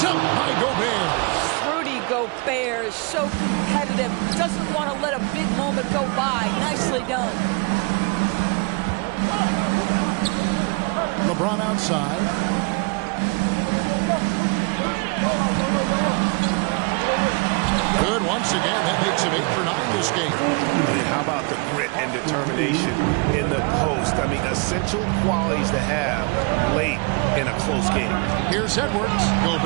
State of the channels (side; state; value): left; quieter; 30.8 dB